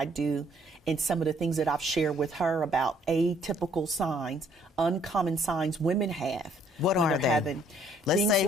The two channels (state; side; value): normal; both; correlation 0.63